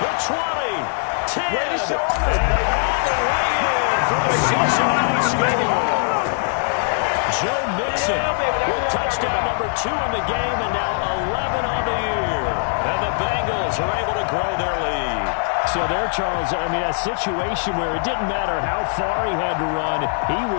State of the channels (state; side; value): silent; right; digital silence